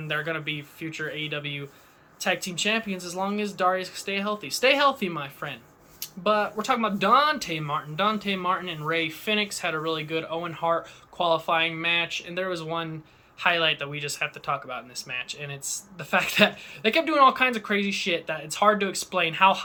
they're going to be future AEW tag team champions as long as Darius can stay healthy. Stay healthy, my friend. But we're talking about Dante Martin. Dante Martin and Ray Phoenix had a really good Owen Hart qualifying match, and there was one highlight that we just have to talk about in this match, and it's the fact that they kept doing all kinds of crazy shit that it's hard to explain how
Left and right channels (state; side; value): identical; both; correlation 1.00